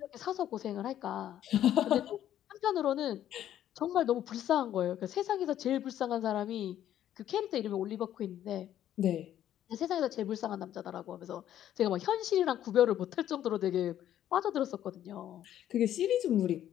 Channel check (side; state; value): right; quieter; 11.4 dB